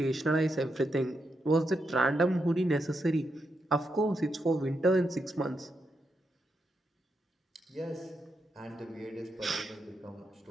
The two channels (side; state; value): both; normal; correlation 0.84